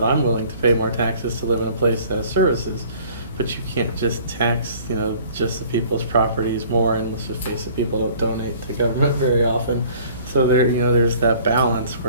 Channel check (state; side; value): inverted; both; correlation -0.52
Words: I'm willing to pay more taxes to live in a place that has services. But you can't just tax, you know, just the people's properties more, and let's just face it, people don't donate to government very often. So there, you know, there's that balance